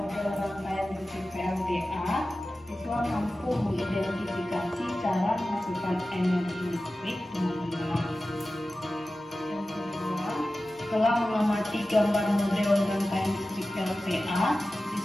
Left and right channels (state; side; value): normal; both; correlation 0.95